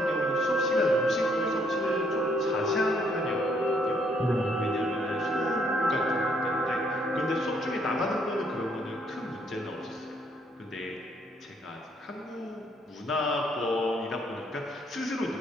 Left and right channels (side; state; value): both; normal; correlation 0.69